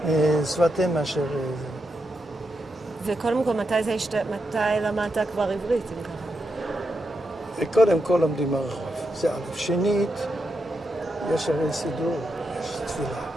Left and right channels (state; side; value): normal; both; correlation 0.85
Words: שפת אם מאשר זה. וקודם כל, מתי למדת כבר עברית, אם ככה? קודם כל לומדים ברחוב, זה א'. שנית, יש הרי סידור, יש תפילה.